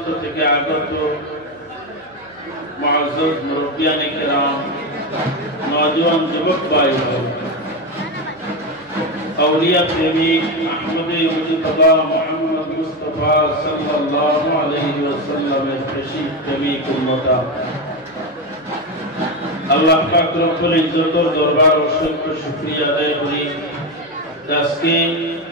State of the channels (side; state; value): right; noise; hum, 30 dB below the sound